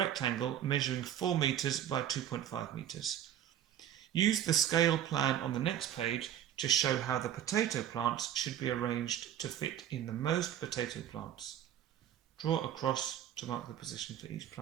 measuring 4 metres by 2.5 metres. Use the scale plan on the next page to show how the potato plants should be arranged to fit in the most potato plants. Draw a cross to mark the position for each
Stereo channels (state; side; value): quieter; left; 10.6 dB